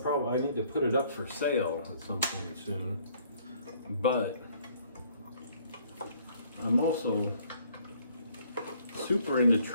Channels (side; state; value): both; inverted; correlation -0.61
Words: need to put it up for sale at some point soon, but I'm also super into